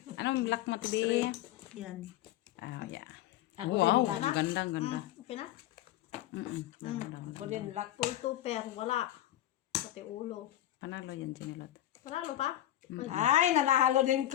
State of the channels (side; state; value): right; quieter; 13.7 dB